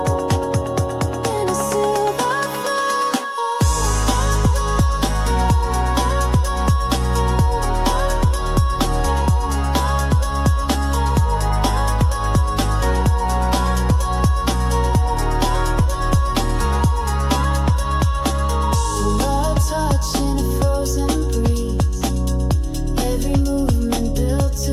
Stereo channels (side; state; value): both; identical; correlation 1.00